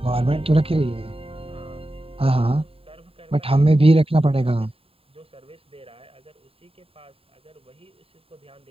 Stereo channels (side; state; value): left; late; 0.27 ms